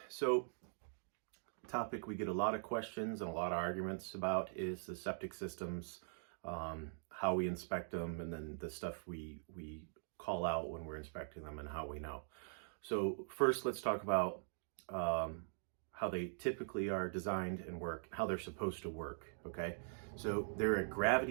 so topic we get a lot of questions and a lot of arguments about is the septic systems, how we inspect them, and then the stuff we call out when we're inspecting them and how we know. So first, let's talk about how they typically are designed and work, how they're supposed to work. Okay, so they're a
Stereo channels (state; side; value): silent; left; digital silence